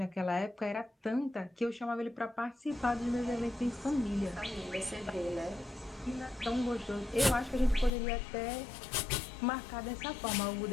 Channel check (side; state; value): right; drops out; at 7.9 s